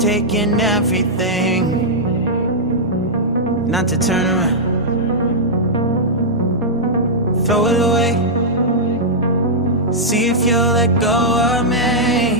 everything not to turn around. Throw it away. See if you'll let go of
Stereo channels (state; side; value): normal; both; correlation -0.08